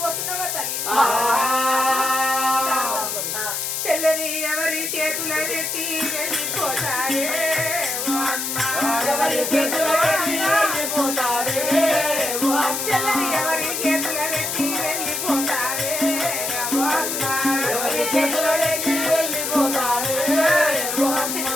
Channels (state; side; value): noise; left; hiss, 2 dB below the sound